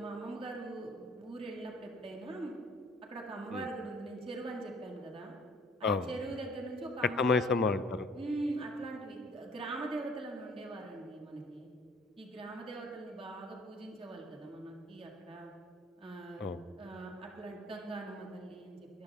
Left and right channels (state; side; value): normal; both; correlation 0.56